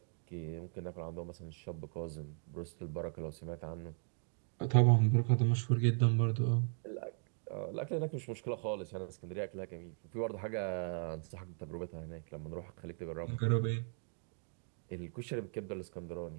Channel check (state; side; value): silent; left; 52 dB below the other